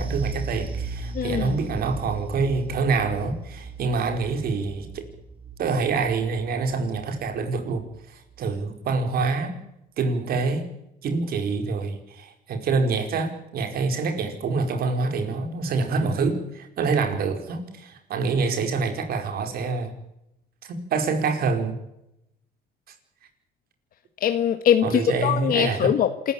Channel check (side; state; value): both; normal; correlation 0.47